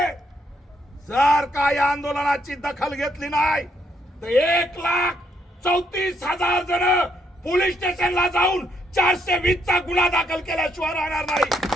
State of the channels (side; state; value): both; normal; correlation 0.74